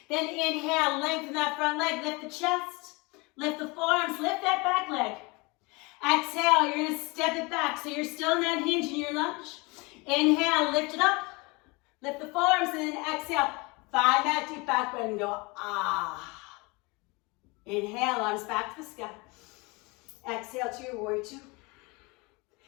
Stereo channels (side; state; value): right; quieter; 26.5 dB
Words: Then inhale, lengthen that front leg, lift the chest, lift the forearms, lift that back leg. Exhale, you're gonna step it back so you're still in that hinge in your lunge. Inhale, lift it up, lift the forearms, and then exhale, find that deep back bend and go, ah. Inhale, arms back to the sky. Exhale to your warrior two.